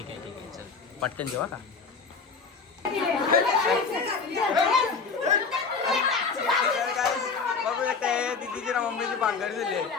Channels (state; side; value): quieter; right; 5.0 dB